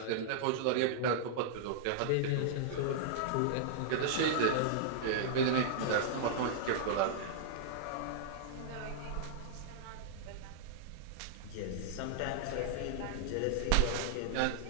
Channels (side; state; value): both; different; correlation -0.02